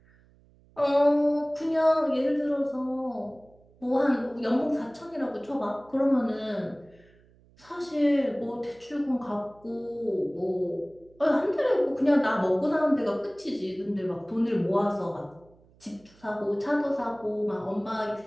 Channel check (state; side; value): noise; right; hum, 29 dB below the sound